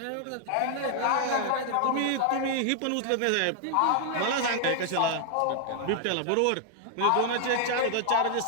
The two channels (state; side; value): different; both; correlation 0.00